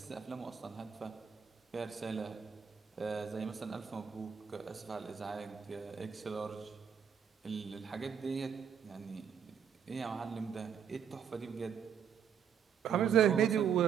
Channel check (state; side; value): quieter; left; 7.7 dB